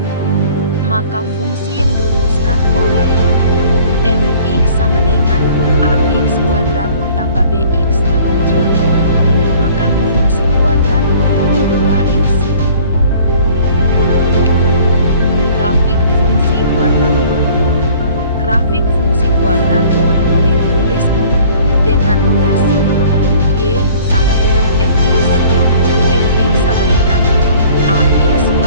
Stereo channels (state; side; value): inverted; both; correlation -0.51